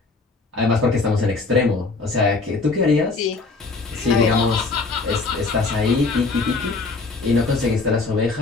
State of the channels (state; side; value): quieter; right; 3.8 dB